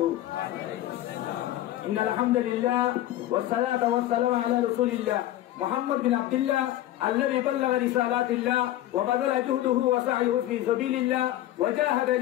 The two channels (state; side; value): quieter; right; 14.0 dB